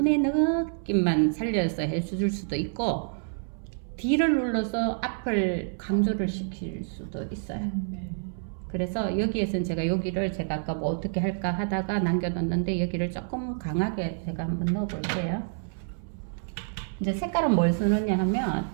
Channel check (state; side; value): silent; left; 59 dB below the other